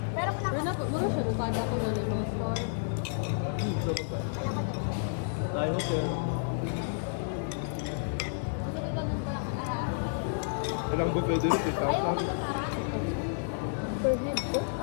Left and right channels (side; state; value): right; silent; digital silence